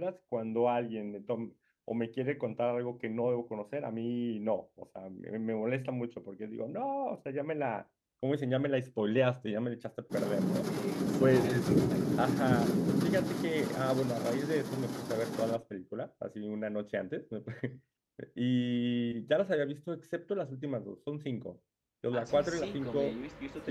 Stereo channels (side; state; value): both; identical; correlation 1.00